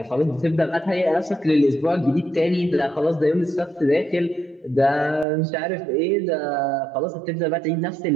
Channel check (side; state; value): left; drops out; at 5.2 s